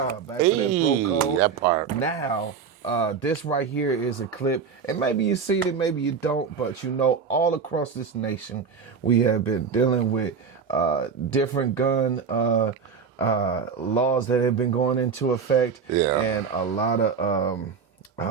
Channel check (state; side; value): quieter; left; 6.1 dB